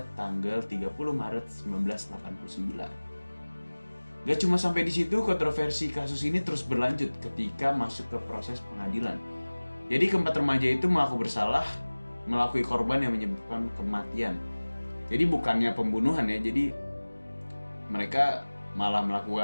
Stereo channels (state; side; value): inverted; both; correlation -1.00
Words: tanggal 30 Maret 1989. Gak cuma sampai di situ, kontroversi kasus ini terus berlanjut ketika masuk ke proses pengadilan. Jadi keempat remaja itu mengaku bersalah melakui korban yang menyebabkan kematian. Jadi bukannya pembunuhan ya, jadi mereka malah